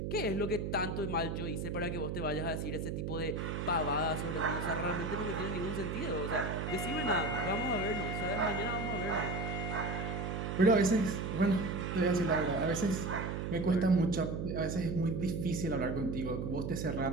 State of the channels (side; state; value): right; noise; hum, 2 dB below the sound